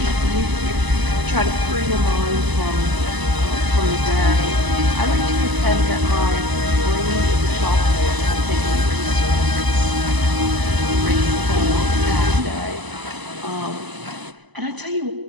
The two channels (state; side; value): late; left; 1.0 ms